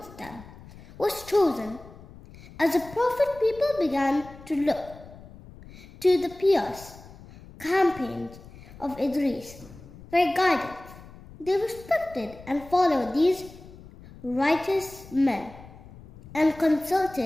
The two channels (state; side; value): noise; left; rumble, 19 dB below the sound